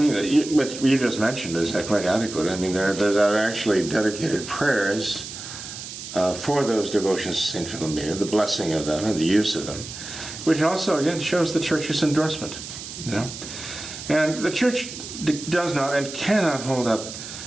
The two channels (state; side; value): noise; right; hiss, 10 dB below the sound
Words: what you just mentioned is quite adequate. I mean, there are actually dedicated prayers for those devotions to Saint Philomena, the blessing of them and the use of them, which also, again, shows the Church's endorsement. And the Church does not and cannot hold up